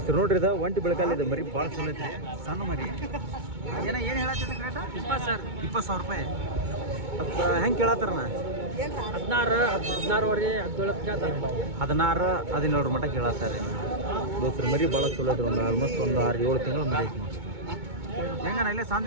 ನೋಡ್ರಿ. ಇದು ಒಂಟಿ ಬೆಳಕಲ್ಲಿ ಇದು ಮರಿ ಭಾಳ ಚಲೋ ಐತಿ. ಸಣ್ಣ ಮರಿ ಏನು ಹೇಳತ್ತಿದ್ರಿ ರೇಟ? 20,000 ರೂಪಾಯಿ. ಅದು ಹೆಂಗೆ ಕೇಳತ್ತಾರಣ್ಣ? 16 17 ಮಟ್ಟ ಕೇಳತ್ತಾರೆ ದೋಸ್ತ್ರು. ಮರಿ ಭಾಳ ಚಲೋ ಐತ್ರಿ. ಒಂದು ಆಲ್ಮೋಸ್ಟ್ ಒಂದು 6-7 ತಿಂಗಳು ಮರಿ ಐತಿ ನೋಡಿ. ಹೆಂಗಣ್ಣ ಇಲ್ಲೇ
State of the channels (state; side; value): late; left; 2.2 ms